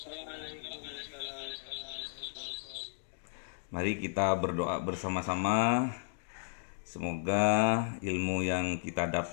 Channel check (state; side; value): silent; right; digital silence